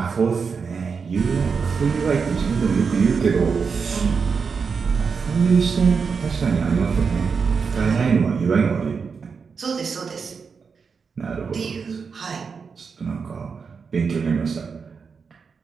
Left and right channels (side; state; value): left; quieter; 5.6 dB